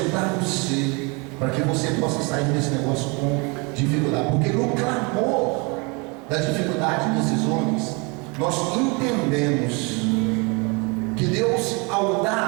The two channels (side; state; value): left; quieter; 30.0 dB